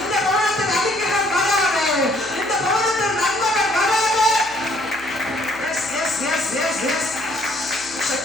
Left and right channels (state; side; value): noise; right; hum, 23 dB below the sound